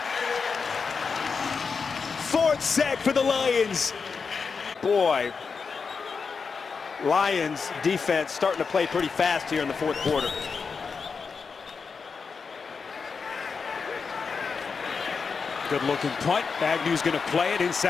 4th sack for the Lions. Boy, Lions defense starting to play pretty fast here in the 4th quarter. Good looking punt. Agnew's going to play it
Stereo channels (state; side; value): quieter; right; 5.3 dB